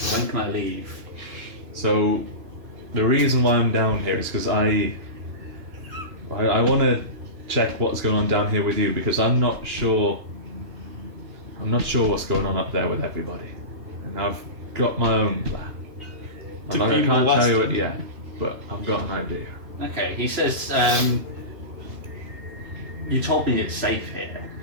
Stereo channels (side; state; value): left; late; 2.9 ms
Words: "When can I leave?" So, the reason why I'm down here is because I want to check what's going on down here with you, because I'm not sure what's going on up there with everybody, and I've got my own plan. I can't tell you it yet, but I've got an idea. Okay, he says, "You told me it's safe here."